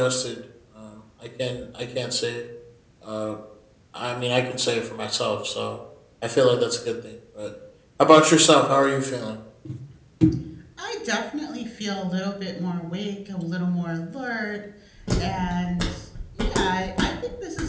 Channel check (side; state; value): both; identical; correlation 1.00